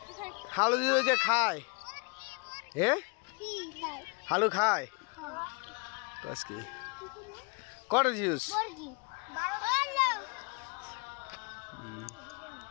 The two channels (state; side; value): quieter; right; 32.2 dB